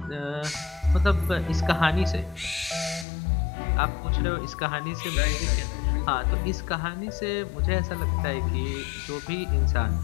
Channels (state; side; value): drops out; right; at 3.1 s